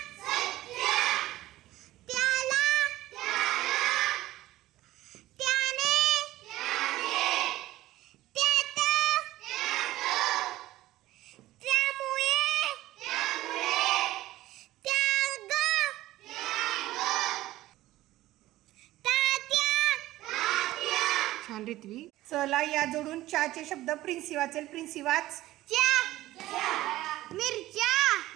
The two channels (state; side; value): quieter; left; 16.0 dB